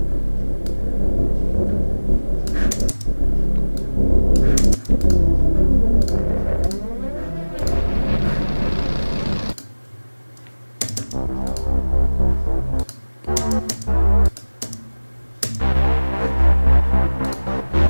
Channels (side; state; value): both; inverted; correlation -1.00